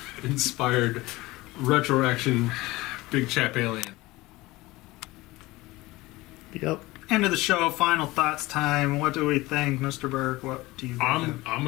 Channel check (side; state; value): right; quieter; 20.1 dB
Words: inspired retro action big chap alien. yep. End of the show. Final thoughts time. What do we think, Mr. Burke? What do you think? I'm